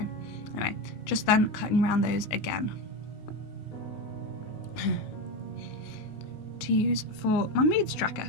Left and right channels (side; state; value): right; late; 19 ms